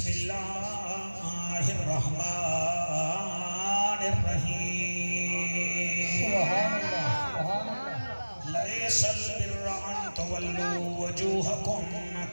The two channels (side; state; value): both; inverted; correlation -1.00